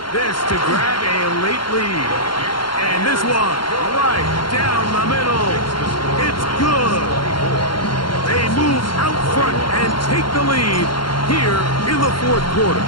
This to grab a late lead. And this one right down the middle. It's good. They move out front and take the lead here in the 4th quarter.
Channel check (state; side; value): late; right; 0.72 ms